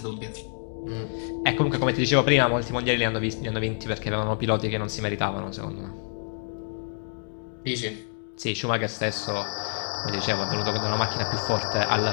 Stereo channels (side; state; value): right; silent; digital silence